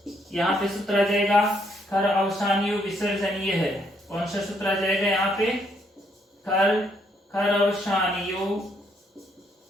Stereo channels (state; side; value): normal; both; correlation 0.72